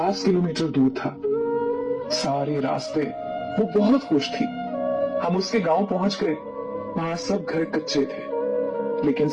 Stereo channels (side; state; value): both; identical; correlation 1.00